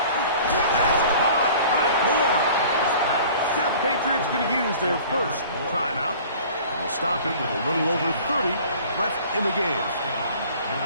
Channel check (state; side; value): inverted; both; correlation -0.47